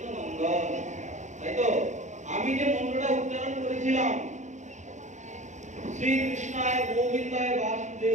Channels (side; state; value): left; late; 0.35 ms